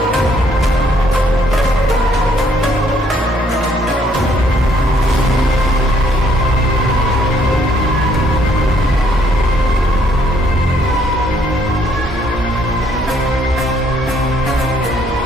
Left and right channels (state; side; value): normal; both; correlation 0.67